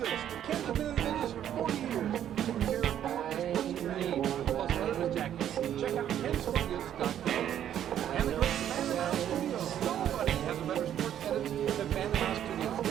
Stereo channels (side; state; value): left; quieter; 10.5 dB